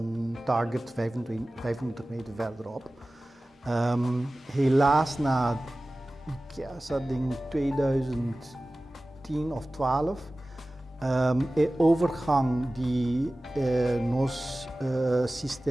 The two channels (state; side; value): normal; both; correlation 0.97